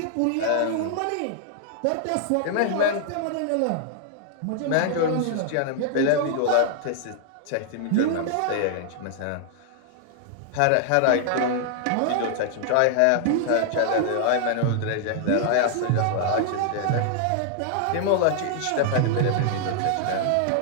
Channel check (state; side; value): different; both; correlation 0.00